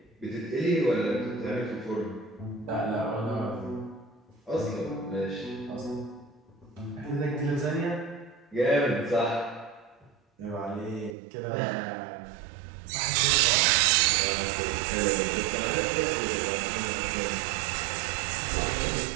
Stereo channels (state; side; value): drops out; left; at 11.2 s